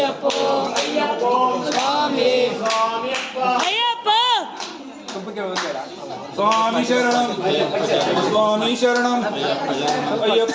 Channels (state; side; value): identical; both; correlation 1.00